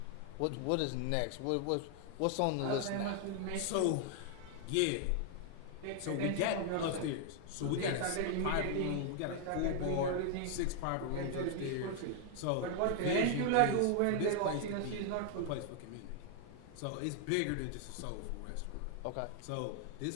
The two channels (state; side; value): different; both; correlation 0.00